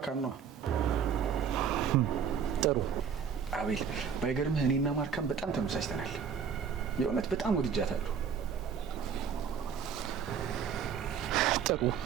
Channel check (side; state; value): left; quieter; 7.1 dB